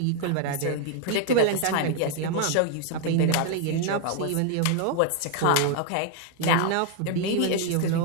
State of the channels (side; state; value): both; different; correlation 0.00